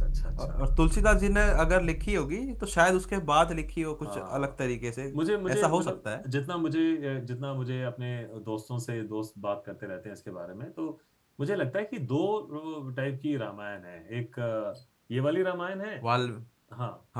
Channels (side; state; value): both; identical; correlation 1.00